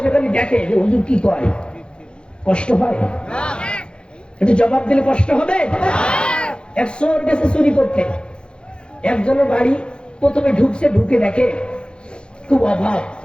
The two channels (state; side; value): late; right; 0.053 ms